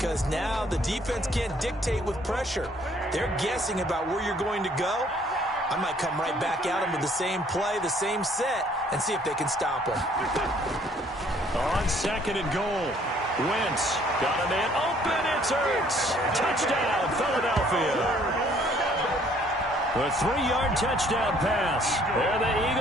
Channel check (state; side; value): normal; both; correlation 0.61